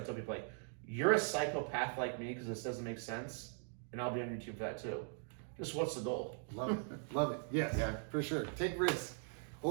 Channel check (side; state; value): left; silent; 51 dB below the other